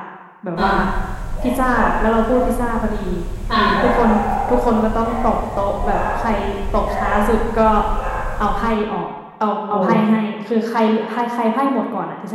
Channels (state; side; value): identical; both; correlation 1.00